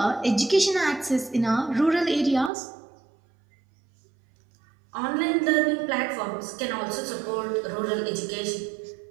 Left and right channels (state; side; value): drops out; left; at 2.5 s